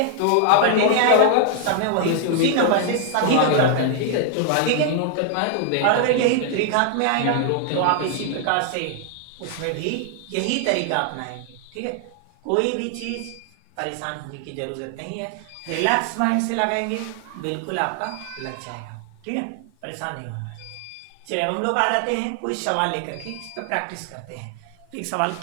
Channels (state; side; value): different; both; correlation 0.00